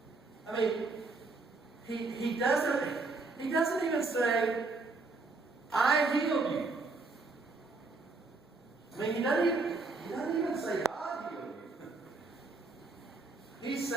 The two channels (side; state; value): left; quieter; 3.7 dB